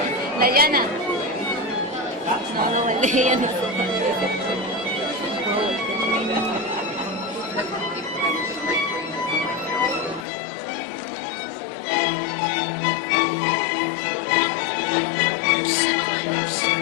Dayana. No, Dayana.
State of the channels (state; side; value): drops out; right; at 10.2 s